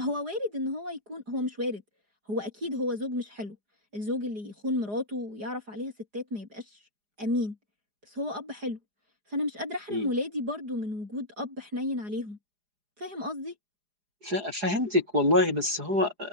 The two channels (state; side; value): late; left; 4.9 ms